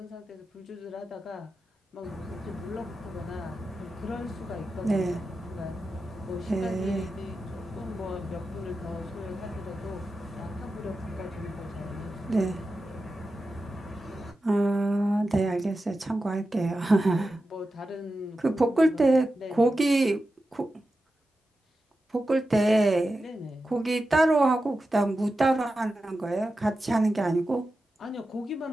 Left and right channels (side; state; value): both; normal; correlation 0.92